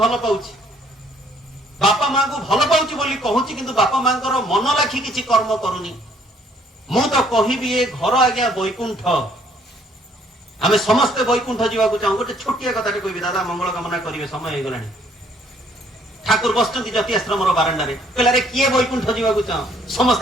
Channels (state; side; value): normal; both; correlation 0.64